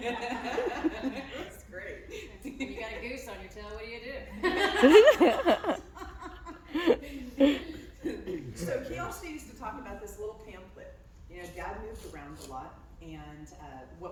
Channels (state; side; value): identical; both; correlation 1.00